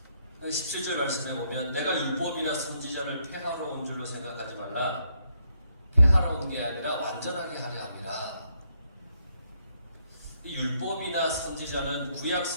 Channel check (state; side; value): inverted; both; correlation -0.74